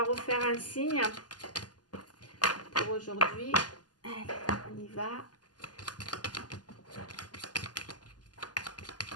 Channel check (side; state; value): right; late; 0.70 ms